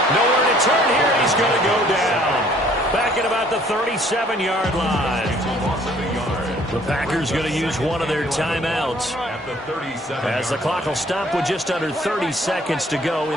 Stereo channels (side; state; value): both; normal; correlation 0.59